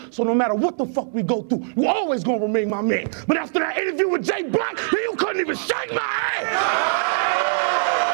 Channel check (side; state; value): left; silent; 56 dB below the other